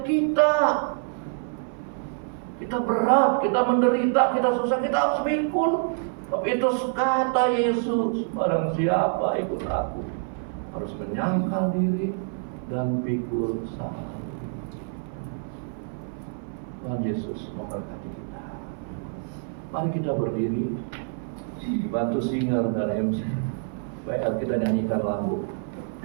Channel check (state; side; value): silent; left; 57 dB below the other